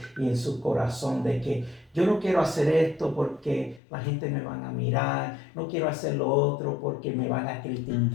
y en su corazón de que yo no quiero hacer esto porque la gente me van a mirar, no quiero hacer lo otro porque me van a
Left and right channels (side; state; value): right; drops out; at 3.8 s